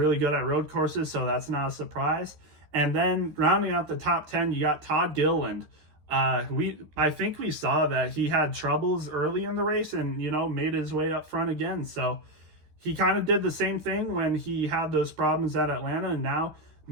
good at road courses, so that's not a surprise. And then rounding out the top 10, you got Todd Gilliland. I think we saw that he had troubles early in the race and, made his way up front again. So he kind of did the same thing when he had those problems at Atlanta, and now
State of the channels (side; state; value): left; late; 13 ms